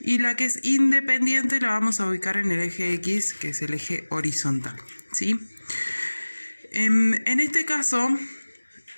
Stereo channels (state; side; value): inverted; both; correlation -1.00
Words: la que es independiente la vamos a ubicar en el eje X, que es el eje horizontal, ¿sí? En este caso,